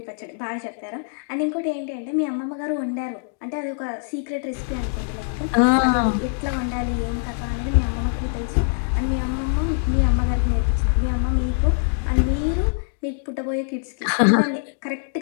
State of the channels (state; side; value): silent; right; digital silence